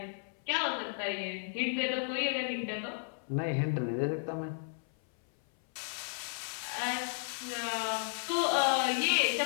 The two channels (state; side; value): silent; right; 55 dB below the other